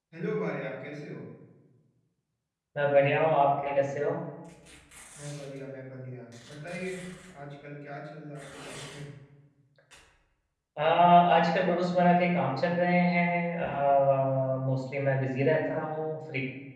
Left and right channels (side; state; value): both; identical; correlation 1.00